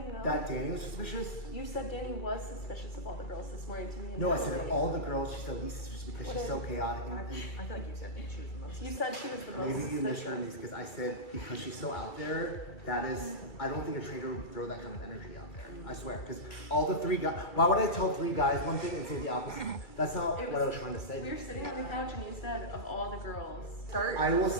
though. That Danny was suspicious? You said Danny was suspicious of all the girls this morning to me. And No, I said Natalie. all the girls, she's the least suspicious because What she's so did- chaotic. I feel like you said she was the most. You said she was the most Maybe you suspicious. misheard me because I said because she's so out there, that is, I don't think a trader would throw that kind of energy out there. I swear. Because all the 3 guys, why would I tell 3 guys one thing and say the opposite? That's not what I was trying to say. We were sitting on the couch and you said of all the girls, start. I will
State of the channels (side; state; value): right; late; 2.3 ms